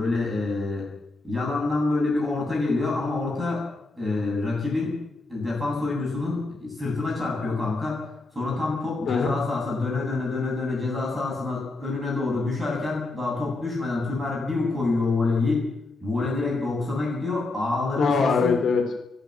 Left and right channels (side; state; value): right; quieter; 3.2 dB